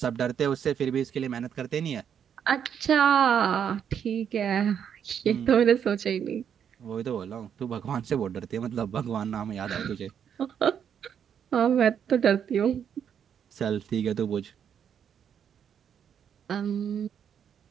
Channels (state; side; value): quieter; left; 8.3 dB